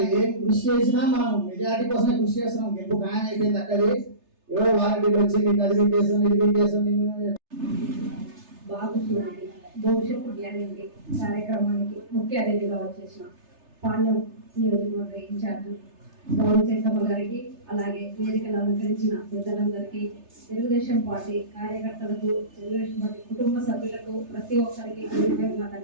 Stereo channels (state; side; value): late; left; 3.3 ms